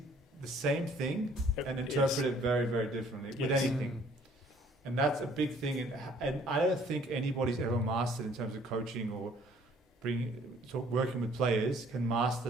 the same thing and interpret it very, very differently with anything. And that's a big thing, and I don't think anybody's ever mastered in terms of coaching or working with players can master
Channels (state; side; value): normal; both; correlation 0.59